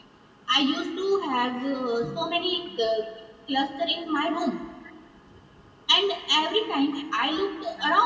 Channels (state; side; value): identical; both; correlation 1.00